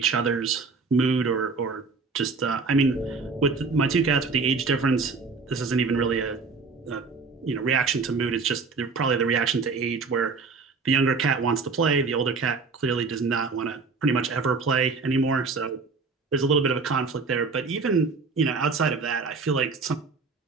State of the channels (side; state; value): left; quieter; 4.4 dB